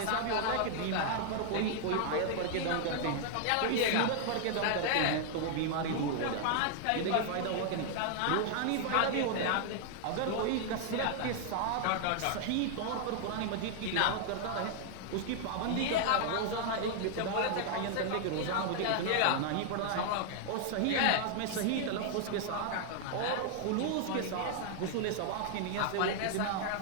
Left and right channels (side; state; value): both; different; correlation 0.00